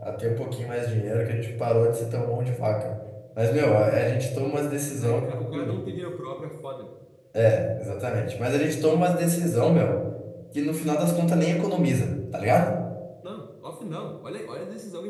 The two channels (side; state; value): both; identical; correlation 1.00